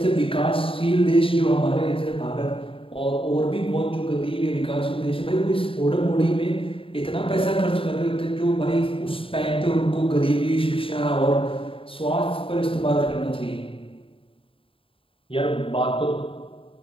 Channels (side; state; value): right; late; 0.26 ms